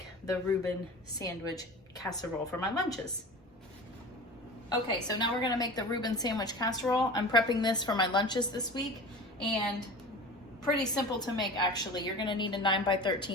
the Reuben sandwich casserole for my lunches. Okay, so now we're gonna make the Reuben sandwich casserole. I'm prepping this for my lunches this week, and pretty simple to make actually. You're gonna need a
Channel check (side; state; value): both; normal; correlation 0.36